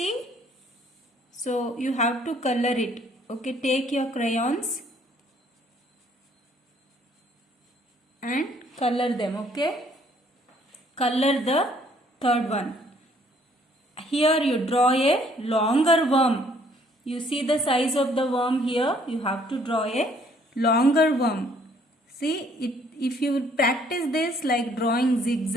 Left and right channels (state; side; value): normal; both; correlation 0.63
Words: So you have to color it. Okay, take your crayons and color them, okay? Color the third one. Here you draw a longer worm. You see the size of the worm here. You have to draw a longer worm. See, if you practice this like drawing